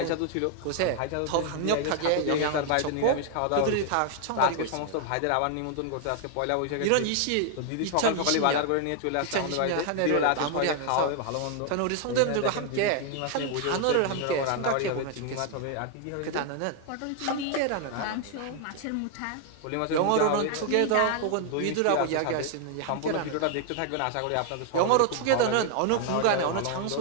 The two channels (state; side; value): different; both; correlation 0.00